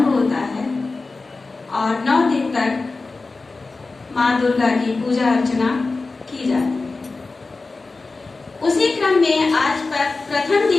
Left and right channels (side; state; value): right; quieter; 3.7 dB